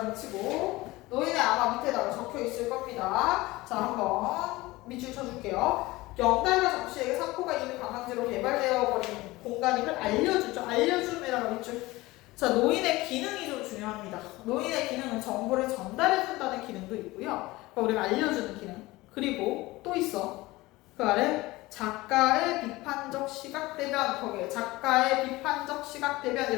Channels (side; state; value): right; quieter; 20.0 dB